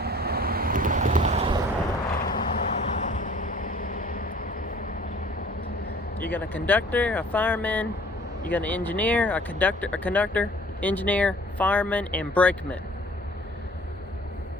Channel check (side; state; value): both; normal; correlation 0.52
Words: You got a conductor, a fireman, you got an engineer, a conductor, engineer, fireman, and brakeman